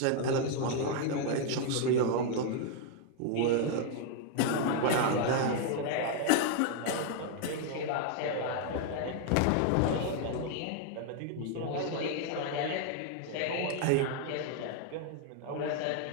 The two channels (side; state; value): both; different; correlation 0.00